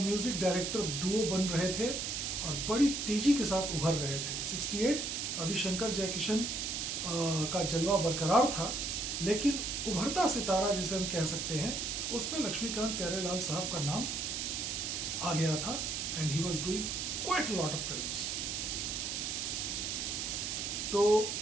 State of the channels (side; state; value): right; noise; hiss, 2 dB below the sound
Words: डायरेक्टर डुओ बन रहे थे और बड़ी तेजी के साथ उभर रहे थे। 68 अभी शंकर जयकिशन का जलवा बरकरार था, लेकिन उभरता सितारा जिसे हम कह सकते हैं उसमें लक्ष्मीकांत प्यारेलाल साहब का नाम आ गया था, and he was doing quite a lot of films. तो